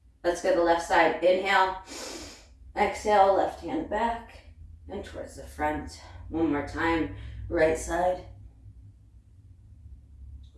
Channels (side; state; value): both; identical; correlation 1.00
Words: Let's go to the left side. Inhale. Exhale, left hand back, and towards the front. One more time, right side.